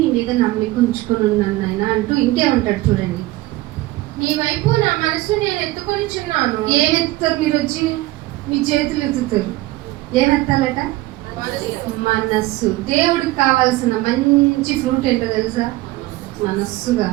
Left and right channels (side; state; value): left; quieter; 18.3 dB